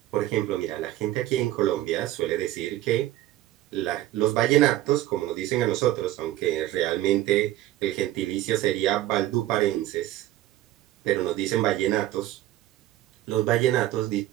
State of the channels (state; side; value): quieter; left; 14.8 dB